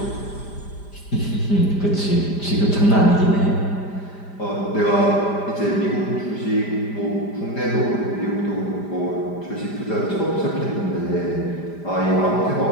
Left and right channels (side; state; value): right; late; 5.0 ms